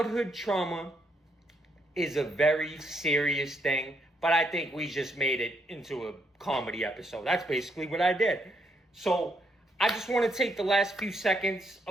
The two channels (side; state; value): both; normal; correlation 0.76